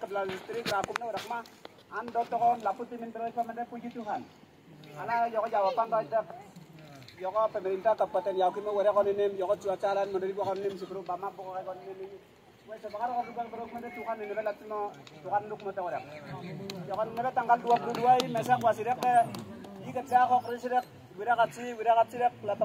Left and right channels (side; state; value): both; identical; correlation 1.00